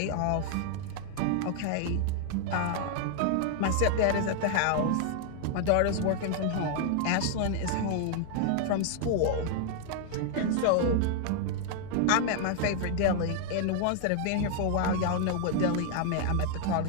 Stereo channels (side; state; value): both; different; correlation 0.00